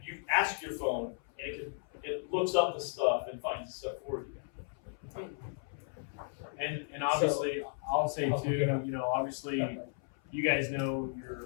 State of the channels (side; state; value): right; silent; 55 dB below the other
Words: You ask your phone, and it looks up the stuff and finds the stuff for you. And obviously, I'll say too, you know, obviously, you guys know